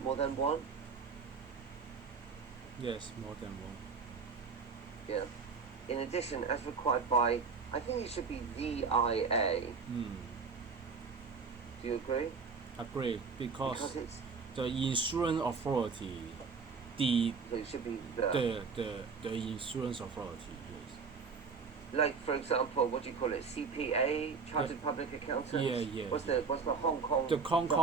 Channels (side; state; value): left; quieter; 5.2 dB